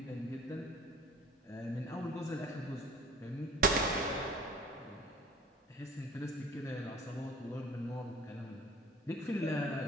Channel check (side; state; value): both; normal; correlation 0.47